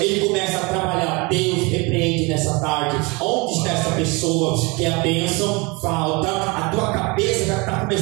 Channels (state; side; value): quieter; left; 27.3 dB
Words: ele começa a trabalhar. Deus repreende nessa tarde. Onde está essa pessoa que a bênção falta? A tua cabeça já está